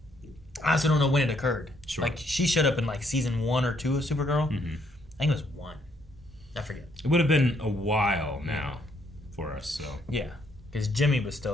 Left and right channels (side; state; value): both; normal; correlation 0.70